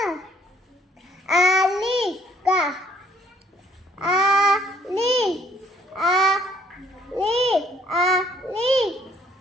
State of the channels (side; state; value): both; normal; correlation 0.62